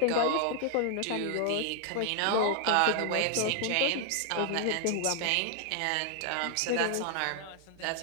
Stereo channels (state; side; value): different; both; correlation 0.00